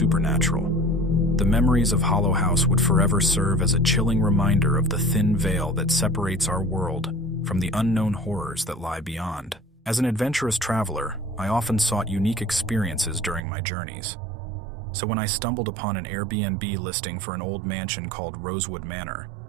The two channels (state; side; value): drops out; left; at 13.4 s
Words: The memories of Hollow House would forever serve as a chilling reminder of the thin veil that separates our world from the unknown horrors that lie beyond. As an adventurous traveler, I often sought unique experiences during my journeys. So when I stumbled upon an Airbnb listing for an old mansion called Rosewood Manor,